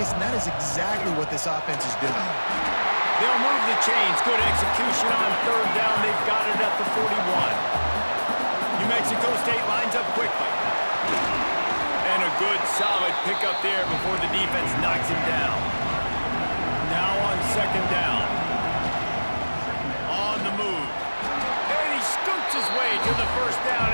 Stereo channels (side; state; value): both; inverted; correlation -1.00